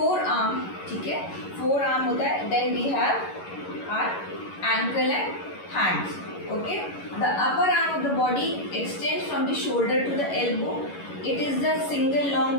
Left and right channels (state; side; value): late; right; 11 ms